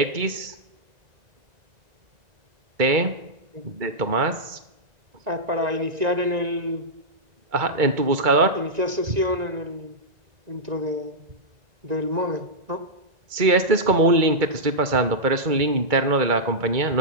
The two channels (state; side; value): late; left; 1.9 ms